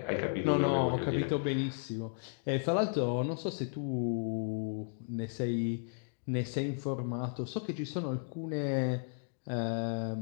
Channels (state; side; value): silent; right; digital silence